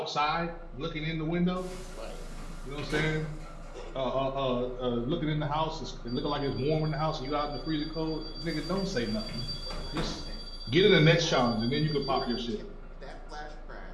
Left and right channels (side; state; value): both; identical; correlation 1.00